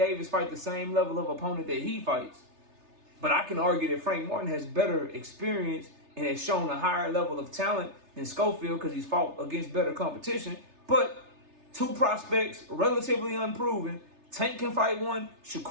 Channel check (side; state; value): left; late; 3.3 ms